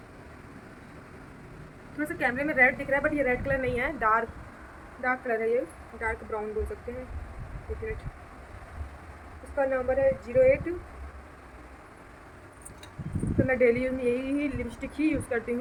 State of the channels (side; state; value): both; identical; correlation 1.00